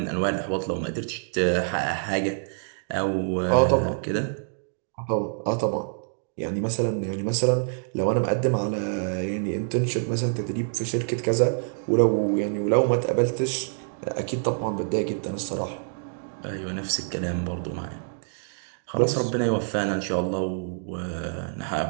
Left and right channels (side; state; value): left; silent; digital silence